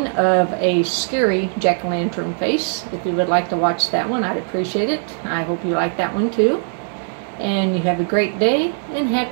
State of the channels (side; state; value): left; silent; 66 dB below the other